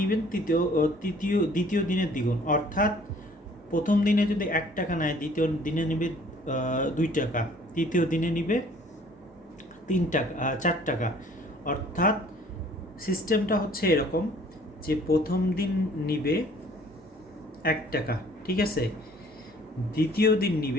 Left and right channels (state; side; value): normal; both; correlation 0.55